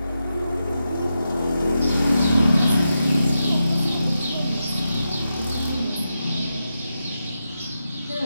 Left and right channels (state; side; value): inverted; both; correlation -0.88